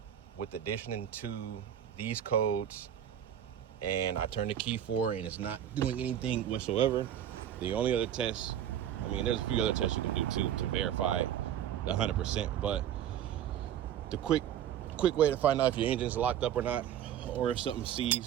with addition to these codes, and I turned the key for it and it's not doing anything whatsoever. The only other test, there's a few other tests you can do too to verify 100%, but the quick way to find out if your engine's locked up or not, or if something's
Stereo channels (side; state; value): left; quieter; 10.3 dB